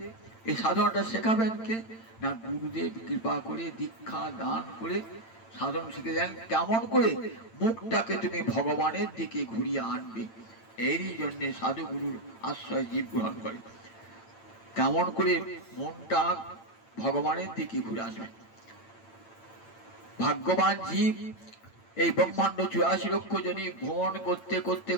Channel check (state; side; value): late; right; 8.9 ms